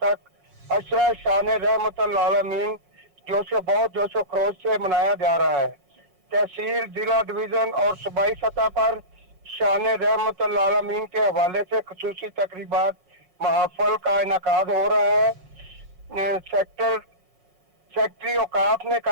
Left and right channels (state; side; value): late; left; 7.1 ms